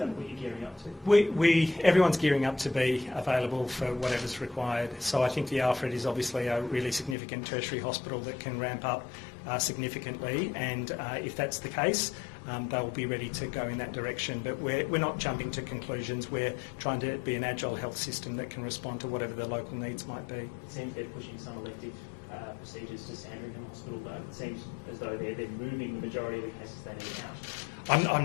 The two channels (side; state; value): right; drops out; at 7.2 s